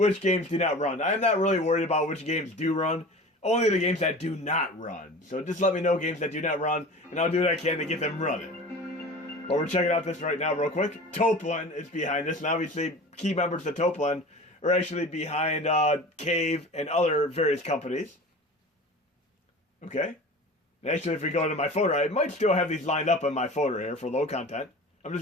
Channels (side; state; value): both; normal; correlation 0.37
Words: games do not run. I'm not really worried about which games do run, only the games that do not run. So just let me know games that do not run, and I'll do what I can to get them running. But we're checking out this right now real quick. Toplin is behind this, and obviously key members of Toplin are actually behind Cave and other various companies. Okay. Actually, if we go into my folder, I might still have these lined up in my folder here for low content. I'm